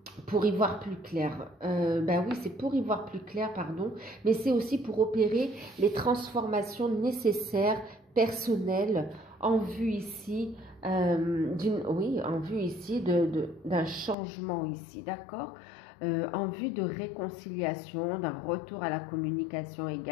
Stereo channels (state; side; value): drops out; right; at 14.2 s